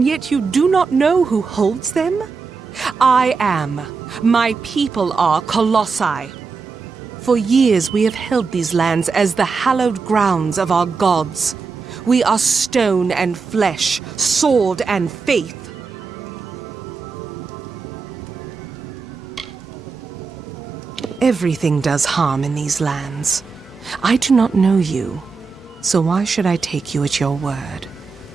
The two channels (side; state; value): left; quieter; 4.9 dB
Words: yet you do not know who holds them? I am. My people are Colossi. For years we have held these lands as the hallowed grounds of our gods. We are stone and flesh, sword and faith. Everything does harm in these lands. I do not know you, so why should I take you at your word?